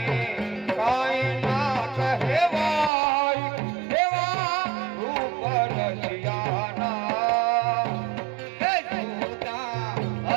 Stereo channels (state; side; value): drops out; left; at 2.9 s